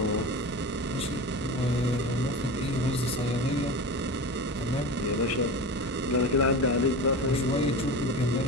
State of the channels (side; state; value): both; normal; correlation 0.29